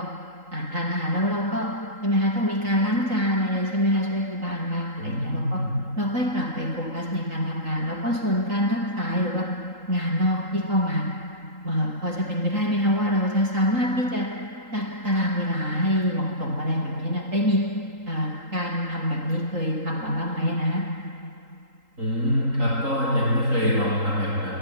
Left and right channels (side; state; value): left; late; 3.8 ms